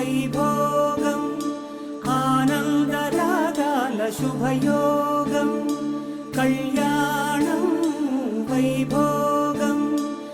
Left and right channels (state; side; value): identical; both; correlation 1.00